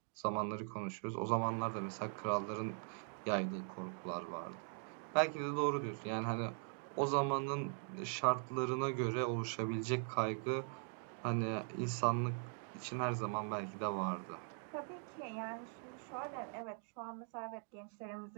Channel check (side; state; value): left; silent; 50 dB below the other